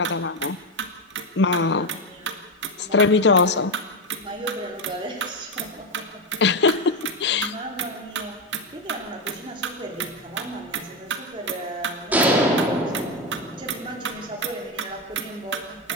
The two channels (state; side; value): normal; both; correlation 0.10